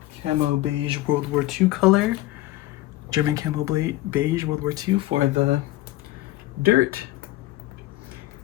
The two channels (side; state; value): right; quieter; 16.7 dB